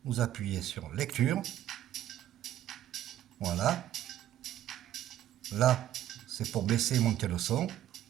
vous appuyez sur lecture, voilà. Là, c'est pour baisser et monter le son.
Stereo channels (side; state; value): left; quieter; 12.2 dB